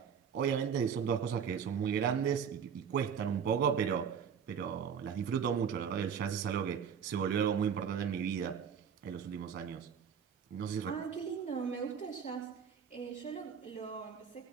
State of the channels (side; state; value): left; quieter; 7.3 dB